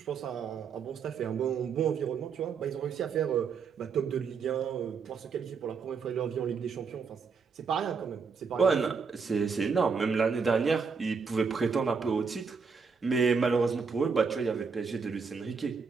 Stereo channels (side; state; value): left; quieter; 5.5 dB